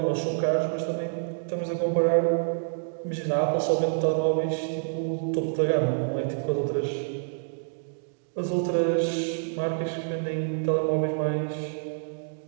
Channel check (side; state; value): left; silent; digital silence